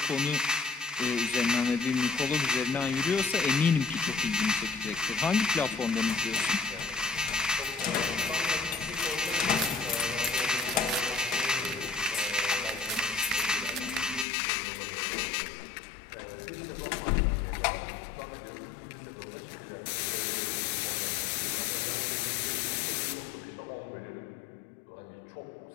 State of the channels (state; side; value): drops out; right; at 14.2 s